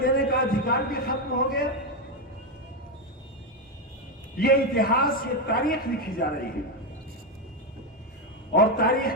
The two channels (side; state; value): both; normal; correlation 0.07